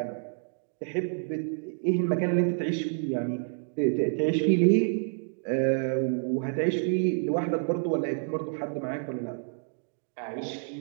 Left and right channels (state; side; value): silent; left; digital silence